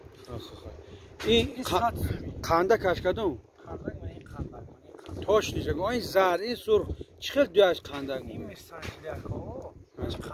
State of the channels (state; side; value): identical; both; correlation 1.00